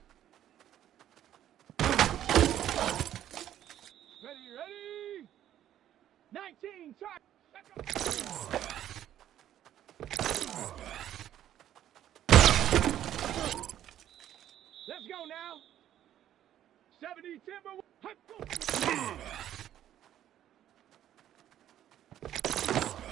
Ready, ready! 19, try! Let's go now! 70 Timber.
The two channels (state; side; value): quieter; left; 11.5 dB